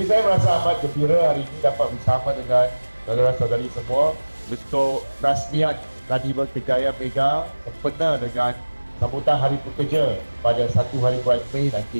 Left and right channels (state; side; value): inverted; both; correlation -1.00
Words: saya merasa amat gembira hari ini dapat bersama dengan saudara-saudari semua untuk rasmian Karnival Kejayaan Mega sempena dengan sambutan Hari Pekerja pada 1 hari bulan Mei